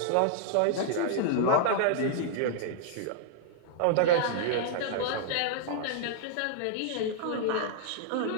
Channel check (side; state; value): both; different; correlation -0.01